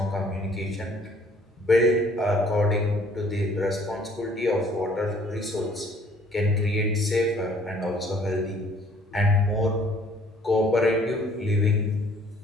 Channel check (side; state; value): both; normal; correlation 0.58